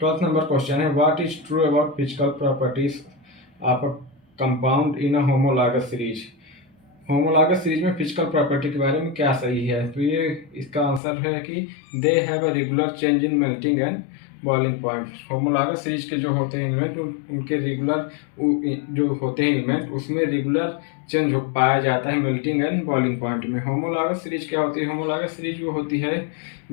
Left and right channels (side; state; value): right; drops out; at 11.0 s